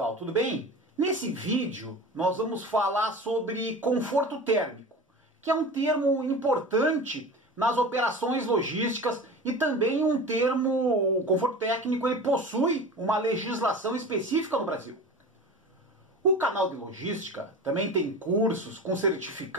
tudo bem? Nesse vídeo nós vamos falar sobre conforto térmico, que é um termo importante nas operações logísticas e também um termo, o conforto técnico, ele possui uma legislação específica no Brasil. O canal de logística também tem cursos com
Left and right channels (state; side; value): normal; both; correlation 0.33